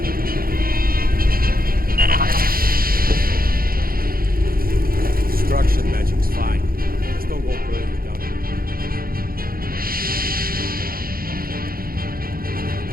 Destruction magic's fine. Just don't go further down here.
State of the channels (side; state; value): left; late; 0.42 ms